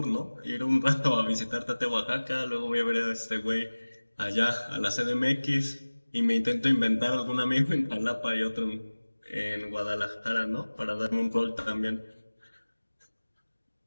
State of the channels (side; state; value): both; inverted; correlation -1.00